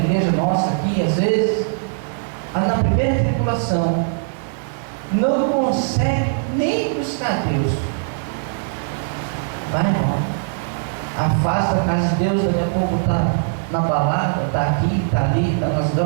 nossa aqui, às vezes, na primeira tribulação, não consegue nem buscar Deus. Vai embora. Afasta a casa de Deus, daqui a pouco está na balada, está aqui, está ali, está nas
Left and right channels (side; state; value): left; silent; 65 dB below the other